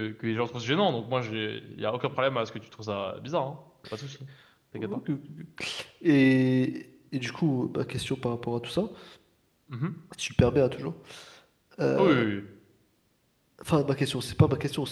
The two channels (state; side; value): identical; both; correlation 1.00